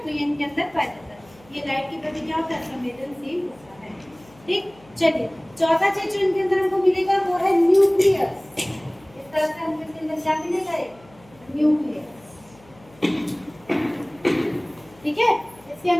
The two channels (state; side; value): noise; left; hum, 26 dB below the sound